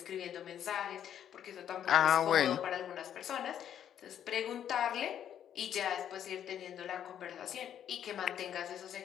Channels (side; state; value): right; quieter; 9.8 dB